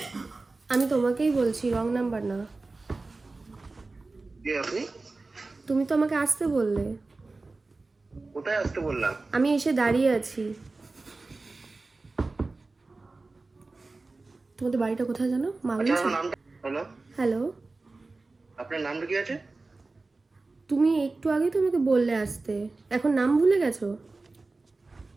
আমি তোমাকেই বলছি, রং নাম্বার না। কে আপনি? তুমি তো আমাকে আসতে বললে। কোথায় আসতে বললাম? আমি এসে দাঁড়িয়ে আছি। তোমাদের বাড়িটা কোথায় জানো? আচ্ছা, মাগলি। আপনার নামটা? হ্যালো, হ্যালো, আপনার নামটা কি আছে? তুমি একটু আগেই তো আমাকে বললে আসতে, এখন নাম ভুলে গেছো?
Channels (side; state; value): left; quieter; 3.5 dB